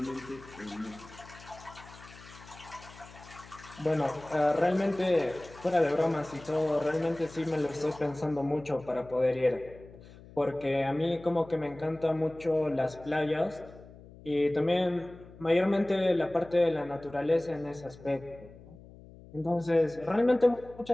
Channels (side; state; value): left; noise; hum, 20 dB below the sound